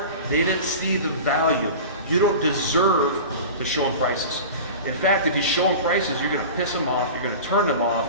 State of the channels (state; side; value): inverted; both; correlation -0.34